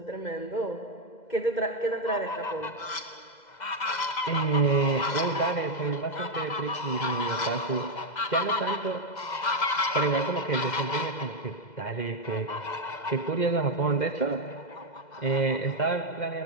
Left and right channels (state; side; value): late; right; 2.0 ms